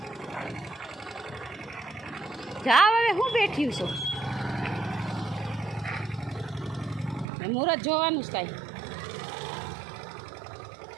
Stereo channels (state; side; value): drops out; left; at 7.2 s